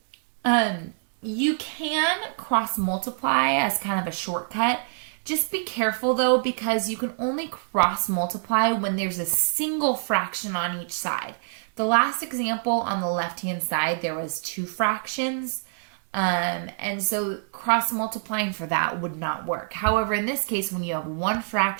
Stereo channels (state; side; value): silent; left; digital silence